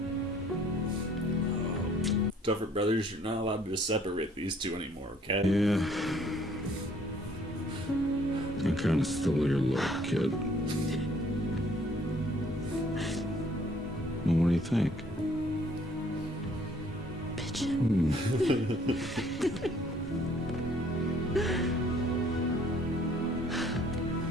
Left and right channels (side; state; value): both; normal; correlation 0.60